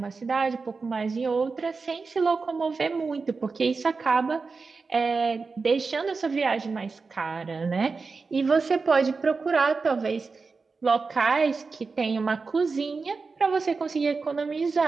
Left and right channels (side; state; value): left; quieter; 4.4 dB